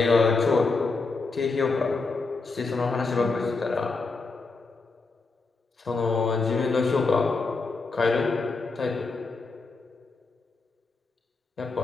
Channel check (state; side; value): quieter; right; 4.0 dB